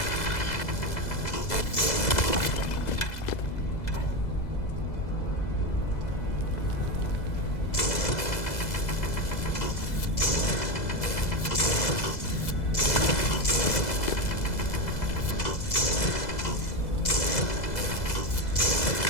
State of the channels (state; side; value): late; right; 2.0 ms